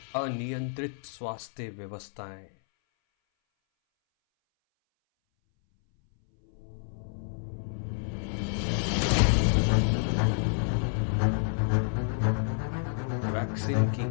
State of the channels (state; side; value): silent; right; 59 dB below the other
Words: अनियंत्रित स्वास्थ्य व्यवस्थाएं, वैक्सीन की